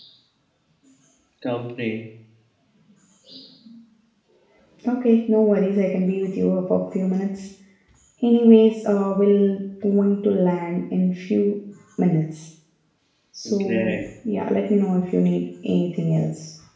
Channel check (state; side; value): identical; both; correlation 1.00